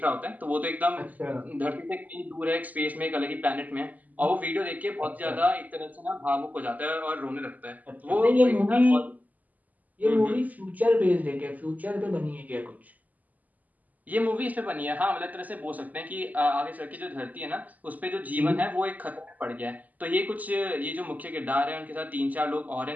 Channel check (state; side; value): late; left; 0.079 ms